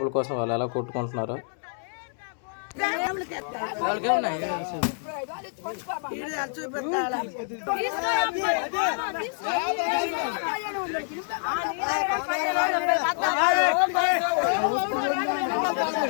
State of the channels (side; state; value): right; silent; 60 dB below the other